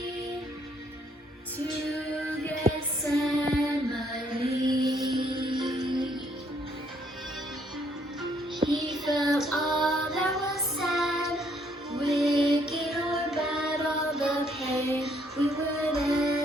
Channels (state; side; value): normal; both; correlation 0.68